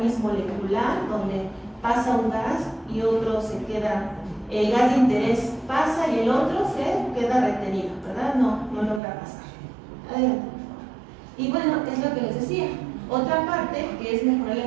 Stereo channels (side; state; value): left; drops out; at 9.0 s